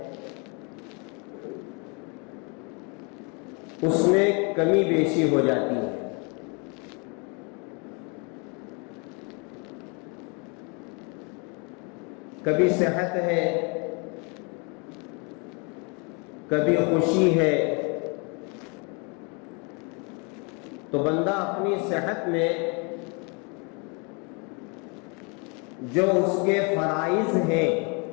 اس میں کمی بیشی ہو جاتی ہے. کبھی صحت ہے، کبھی خوشی ہے، تو بندہ اپنی صحت میں جو اس کے فرائض ہیں،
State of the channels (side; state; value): right; quieter; 33.3 dB